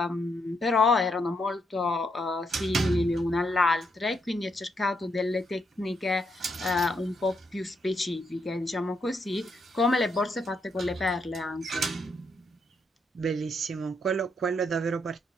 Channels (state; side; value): normal; both; correlation 0.77